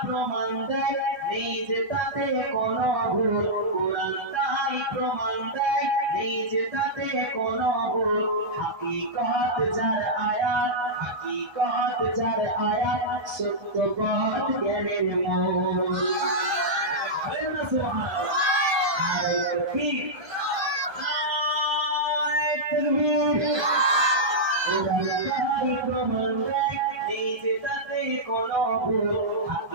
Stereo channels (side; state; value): left; late; 1.3 ms